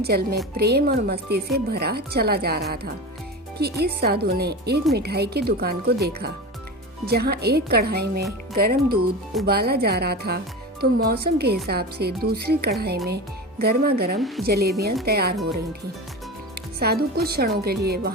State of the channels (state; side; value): normal; both; correlation 0.27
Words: में प्रेम और मस्ती से भरा चला जा रहा था कि इस साधु ने एक मिठाई की दुकान को देखा जहां एक कढ़ाई में गर्म दूध उबाला जा रहा था तो मौसम के हिसाब से दूसरी कढ़ाई में गर्मा गर्म जलेबियां तैयार हो रही थीं। साधु कुछ क्षणों के लिए